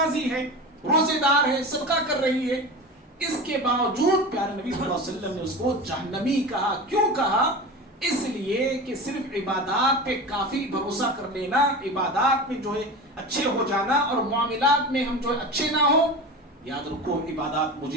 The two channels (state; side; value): normal; both; correlation 0.29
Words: ہے، روزے دار ہے، صدقہ کر رہی ہے، اس کے باوجود پیارے نبی صلی اللہ علیہ وسلم نے اس کو جہنمی کہا. کیوں کہا؟ اس لیے کہ صرف عبادات پہ کافی بھروسہ کر لینا، عبادات میں جو ہے اچھے ہو جانا اور معاملات میں ہم جو ہے اچھے نہ ہو، یاد رکھو عبادات